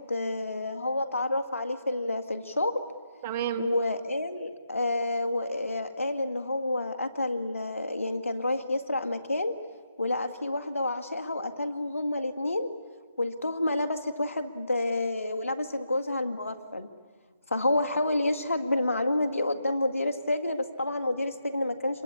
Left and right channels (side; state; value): both; inverted; correlation -0.82